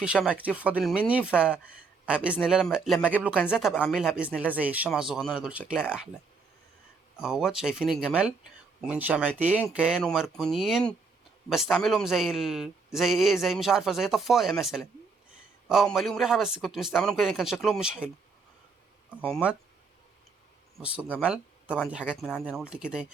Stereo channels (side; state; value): left; quieter; 4.5 dB